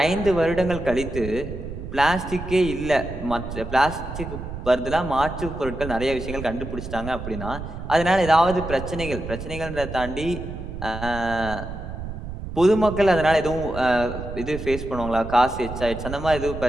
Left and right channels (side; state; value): right; noise; rumble, 9 dB below the sound